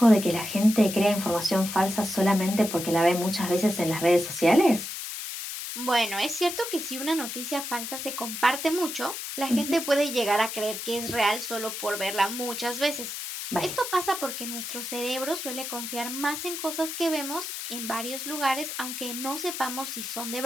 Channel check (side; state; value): left; noise; hiss, 6 dB below the sound